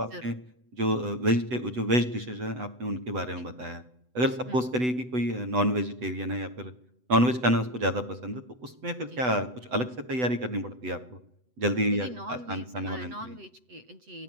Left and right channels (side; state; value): left; late; 8.0 ms